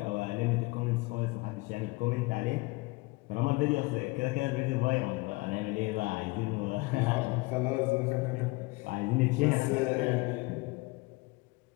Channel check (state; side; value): quieter; right; 23.9 dB